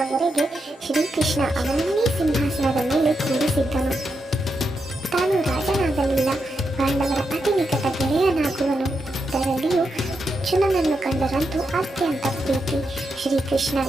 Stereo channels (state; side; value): normal; both; correlation 0.85